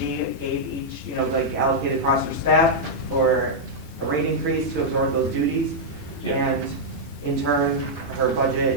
gave each, like allocated across her staff for a rate increase to absorb those duties. Yeah. And in turn, her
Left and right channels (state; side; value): late; left; 3.3 ms